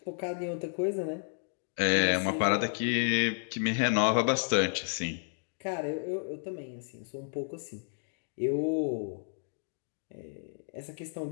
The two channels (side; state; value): right; silent; digital silence